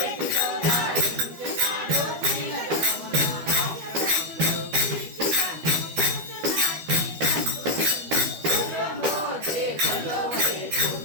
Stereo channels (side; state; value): left; late; 12 ms